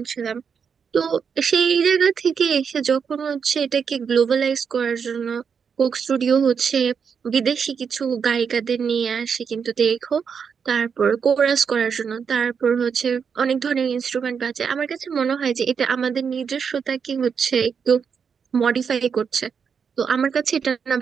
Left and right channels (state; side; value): quieter; left; 6.5 dB